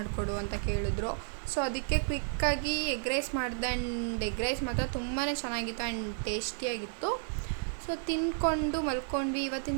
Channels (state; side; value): silent; left; 56 dB below the other